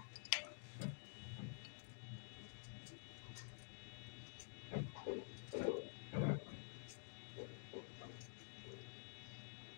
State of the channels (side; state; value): right; silent; digital silence